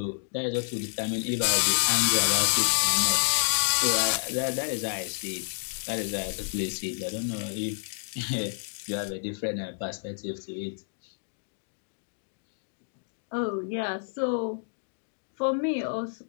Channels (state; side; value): silent; right; digital silence